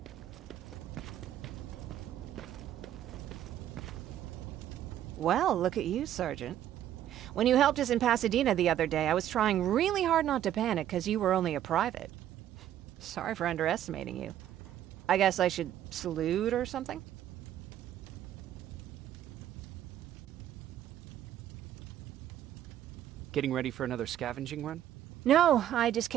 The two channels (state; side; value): quieter; left; 11.5 dB